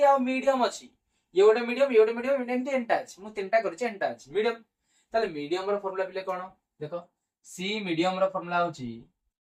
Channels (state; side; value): identical; both; correlation 1.00